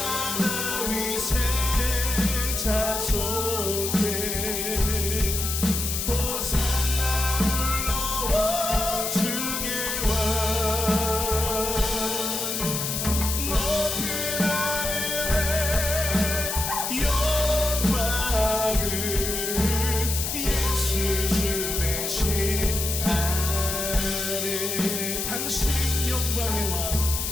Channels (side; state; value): left; noise; hiss, 2 dB below the sound